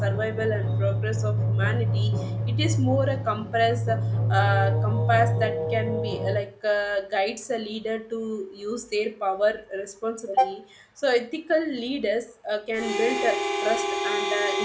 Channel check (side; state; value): both; identical; correlation 1.00